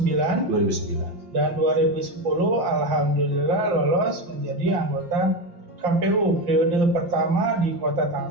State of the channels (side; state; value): left; late; 5.7 ms